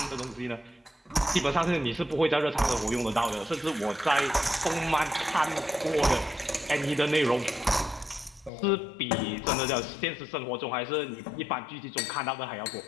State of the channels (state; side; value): drops out; right; at 8.5 s